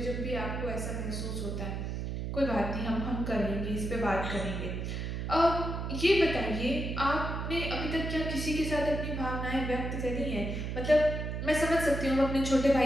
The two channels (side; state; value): right; noise; hum, 3 dB below the sound